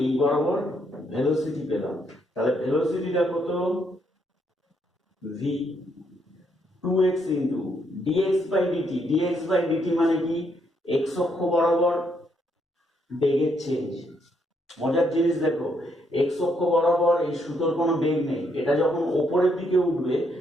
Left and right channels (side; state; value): both; normal; correlation 0.74